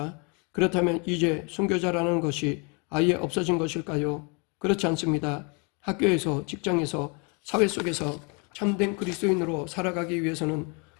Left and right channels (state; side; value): quieter; right; 33.1 dB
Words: 그렇다면 이제 순교자라는 것이 아예 없어진 것일까요? 그렇지 않습니다. 학교에서, 직장에서, 사회 속에서 참된 그리스도인으로 살아가기 위해서는